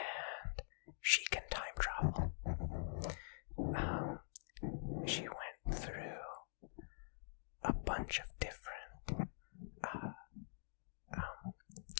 she can time travel. She went through a bunch of different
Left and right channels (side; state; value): right; silent; digital silence